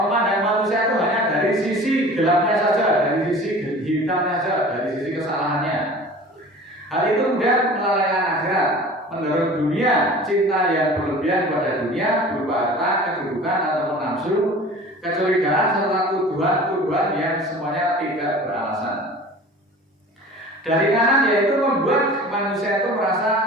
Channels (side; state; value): both; normal; correlation 0.42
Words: manusia itu hanya dari sisi gelapnya saja, dari sisi hitamnya saja, dari sisi kesalahannya. Hal itu kemudian melalaikan akhirat, mendorong dunia, cinta yang berlebihan pada dunia berupa harta, kedudukan ataupun nafsu, kecurigaan serta tuduhan-tuduhan yang semuanya tidak beralasan. Dari kanan yaitu membuat manusia itu merasa